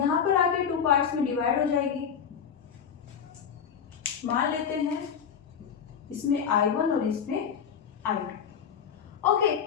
पर आके टू पार्ट्स में डिवाइड हो जाएगी। मान लेते हैं इसमें I1 और इसमें I2। ओके,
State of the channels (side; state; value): right; quieter; 7.5 dB